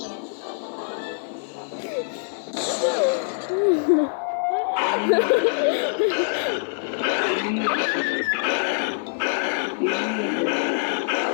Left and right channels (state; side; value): silent; right; 59 dB below the other